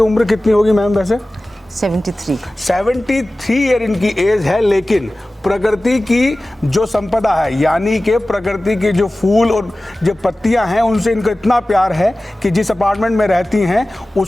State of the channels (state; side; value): normal; both; correlation 0.97